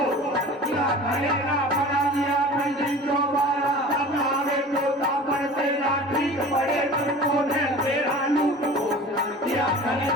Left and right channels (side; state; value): both; normal; correlation 0.39